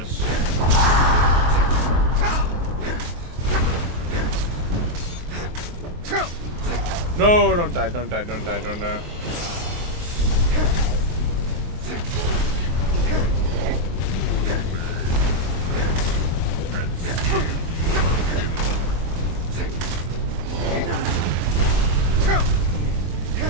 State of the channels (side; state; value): left; late; 23 ms